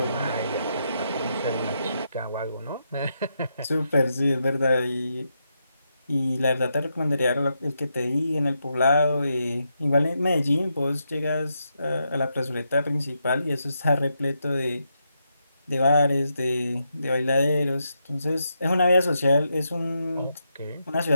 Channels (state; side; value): inverted; both; correlation -0.82